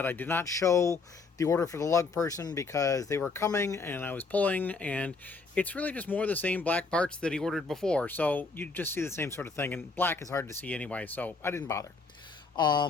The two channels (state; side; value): quieter; right; 4.2 dB